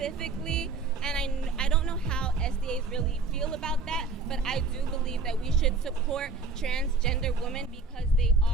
and I don't know how SDAs really feel about that, but I do believe that we should support transgender women because they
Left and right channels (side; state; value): left; quieter; 3.9 dB